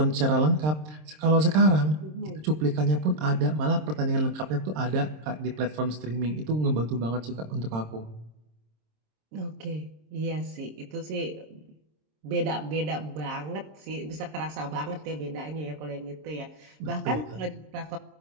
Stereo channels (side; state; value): left; late; 26 ms